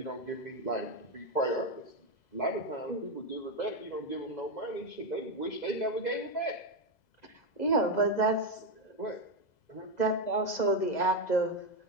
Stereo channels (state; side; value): late; right; 2.0 ms